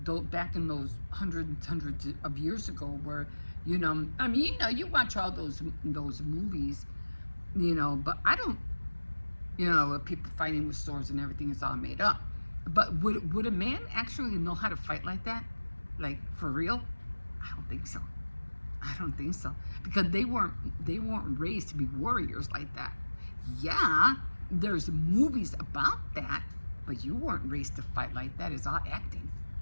Back in those hundreds of years ago, where, I mean, you watch all those movies, but I don't, people fighting with swords and everything is all made up. But would a man actually know how to fight like that? Like, for real? I don't think so. I don't think so. Because they weren't raised to be warriors like that. Yeah, there's movies about that, but you weren't raised to fight like that. It's all acting.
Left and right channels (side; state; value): both; inverted; correlation -1.00